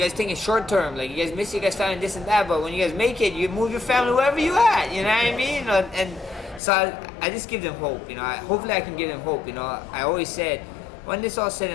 think in short term. Like you guys miss your guys family, this and that. But when you guys make it, you move your family wherever you at. You know what I mean? You know, and so I just give them hope. You know, hopefully I can give them hope. You know, I always said, when this all said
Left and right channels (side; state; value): right; drops out; at 6.6 s